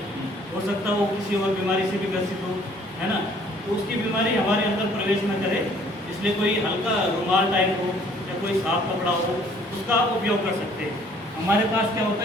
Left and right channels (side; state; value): both; normal; correlation 0.58